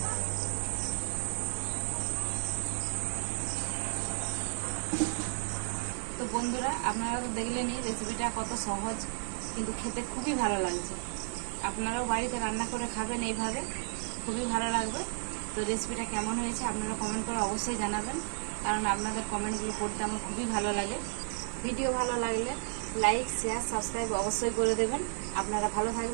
তো বন্ধুরা, আপনারা তো দেখলেনই রেসিপিটা কত সহজ, কিন্তু খেতে খুবই ভালো লাগছে। আপনারাও বাড়িতে রান্না করে খাবেন এইভাবে, খুবই ভালো লাগবে। তো রেসিপিটা কেমন হয়েছে আপনারা কমেন্ট করে অবশ্যই জানাবেন, কারণ আপনাদের কমেন্টগুলো পড়তে আমার খুবই ভালো লাগে। ভিডিও ভালো লাগলে লাইক, শেয়ার, সাবস্ক্রাইব অবশ্যই করে দেবেন। আপনারা ভালো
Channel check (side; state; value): left; silent; 56 dB below the other